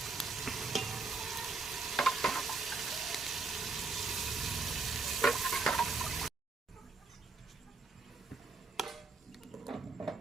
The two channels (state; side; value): quieter; left; 4.0 dB